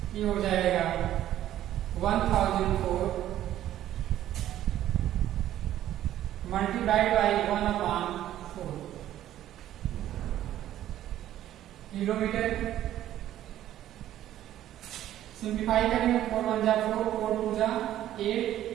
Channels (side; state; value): left; quieter; 12.5 dB